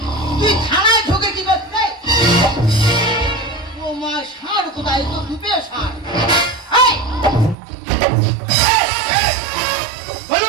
তুই থানায় ঢোকে কি করতে? ও মা, ষাঁড় কোথায়? তো দুপে ষাঁড়। এই,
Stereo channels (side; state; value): left; drops out; at 7.6 s